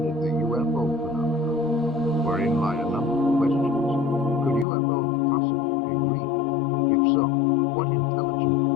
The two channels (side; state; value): right; drops out; at 4.7 s